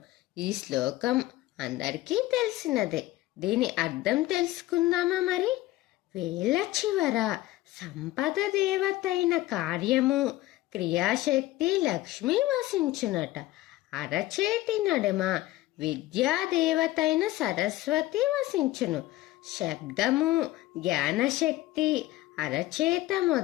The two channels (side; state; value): right; quieter; 16.9 dB